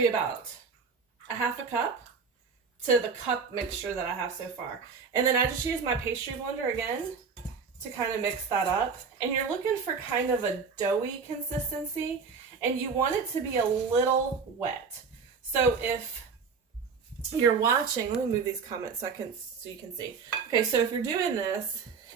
be about a 1/2 cup to the cup mixture that I have so far. And then I just use my pastry blender again to kind of mix that up. And you're looking for kind of a doughy consistency, and you want it to be a little wet. So if you're watching, let me move these comments so you can see. Okay, so if you're doing this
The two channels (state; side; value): quieter; left; 5.4 dB